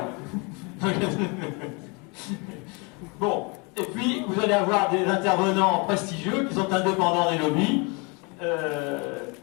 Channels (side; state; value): right; quieter; 31.1 dB